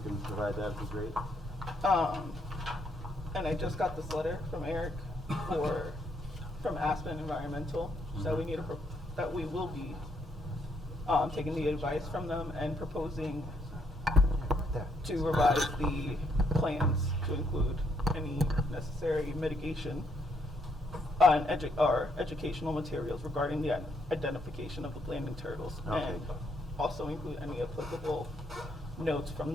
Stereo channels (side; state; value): both; normal; correlation 0.73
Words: can provide that, would be great. And I just got this letter from Eric from Aspen Environmental, so that we will be taking the advice from them and proposing to revise the plans to include any necessary mitigation and educational materials regarding the identification of the landing turtles, Okay. and also include any applicable notes from